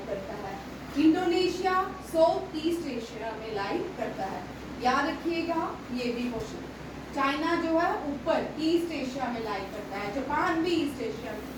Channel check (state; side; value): identical; both; correlation 1.00